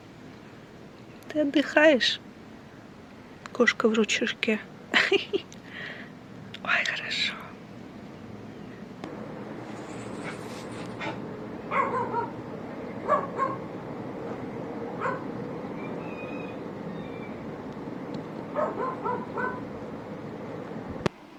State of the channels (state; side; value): identical; both; correlation 1.00